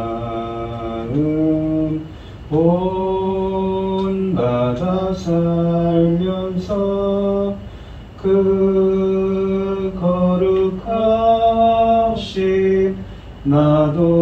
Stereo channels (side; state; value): both; identical; correlation 1.00